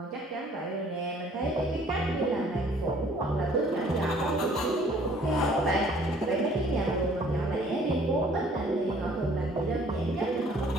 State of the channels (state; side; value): normal; both; correlation 0.57